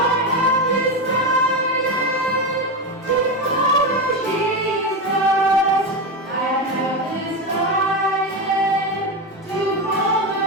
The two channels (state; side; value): normal; both; correlation 0.15